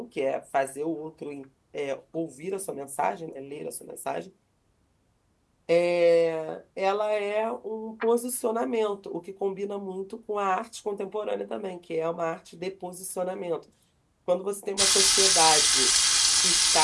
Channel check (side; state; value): both; identical; correlation 1.00